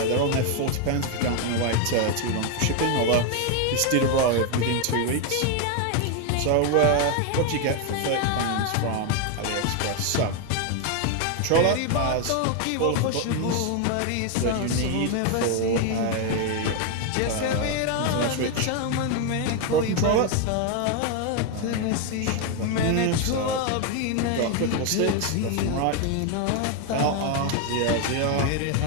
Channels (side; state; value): both; different; correlation 0.01